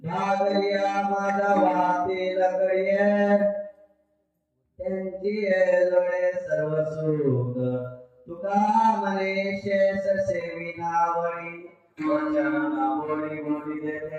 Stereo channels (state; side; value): identical; both; correlation 1.00